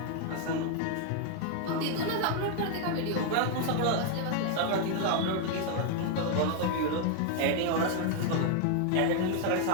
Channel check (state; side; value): different; both; correlation 0.00